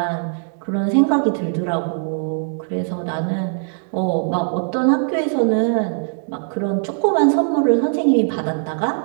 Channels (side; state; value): left; silent; digital silence